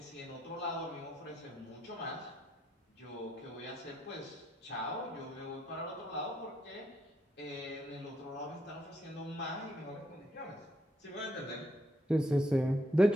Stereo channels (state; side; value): normal; both; correlation 0.76